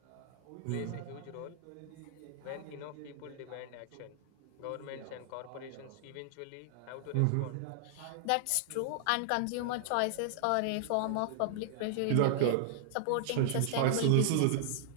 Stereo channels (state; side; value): different; both; correlation -0.01